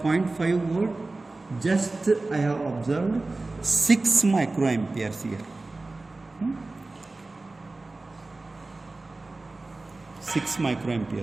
volt, just I have observed 6 microamperes here. 6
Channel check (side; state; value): left; quieter; 3.2 dB